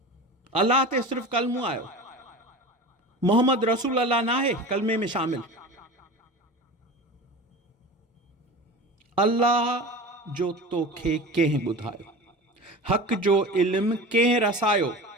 अल्लाह ते सिर्फ़ कलमू आयो। मोहम्मद रसूल अल्लाह न आहे कलमे में शामिल। अल्लाह जो तोखे कंहिं ॿुधायो, हक़ जो इल्मु कंहिं रसायो।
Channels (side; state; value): both; normal; correlation 0.32